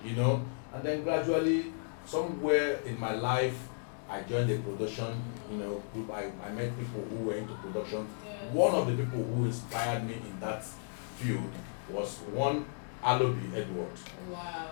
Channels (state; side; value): silent; right; digital silence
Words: And then gradually, somewhere in my life, I joined a production, group. I met people who were into production. Yes. One of the people who inspired me in that field was one Alobi Edward. Wow.